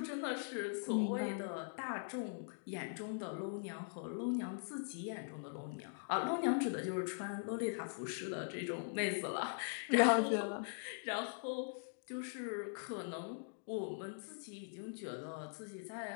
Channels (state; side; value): silent; right; digital silence